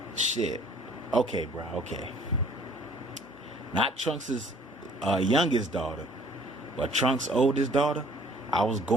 shit. Okay, bro, okay. Not Trunks' youngest daughter, but Trunks' oldest daughter. I was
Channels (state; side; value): normal; both; correlation 0.56